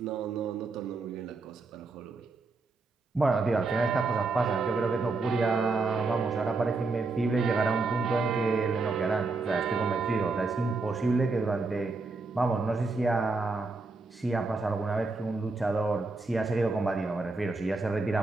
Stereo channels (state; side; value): quieter; left; 3.7 dB